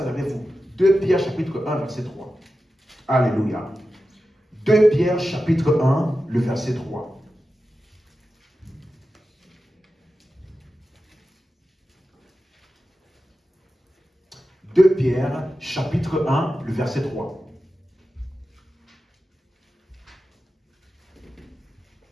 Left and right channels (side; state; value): both; normal; correlation 0.92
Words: avec vous. 2 Pierre chapitre 1, verset 3. Alléluia. 2 Pierre chapitre 1, le verset 3. « 2 Pierre chapitre 1, le verset 3.